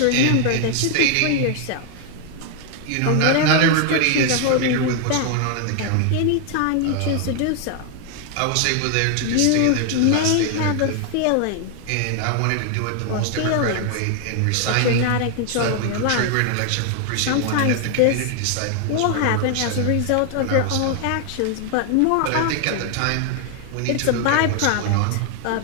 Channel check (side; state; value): both; different; correlation 0.00